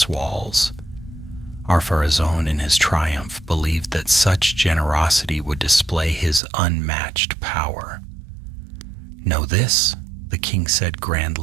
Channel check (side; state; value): left; drops out; at 6.4 s